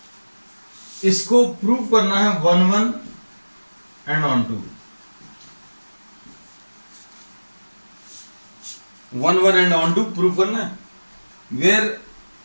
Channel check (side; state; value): both; inverted; correlation -1.00